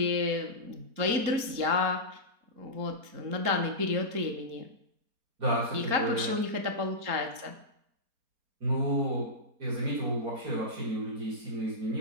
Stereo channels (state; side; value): late; left; 4.3 ms